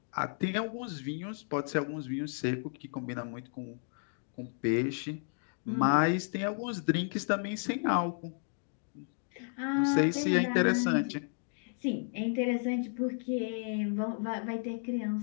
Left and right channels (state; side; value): silent; right; 56 dB below the other